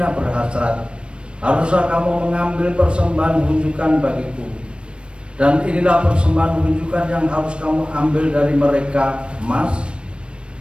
berhasrat. Haruslah kamu mengambil persembahan unjukan bagiku. Dan inilah persembahan unjukan yang harus kamu ambil dari mereka: emas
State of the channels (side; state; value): left; late; 0.057 ms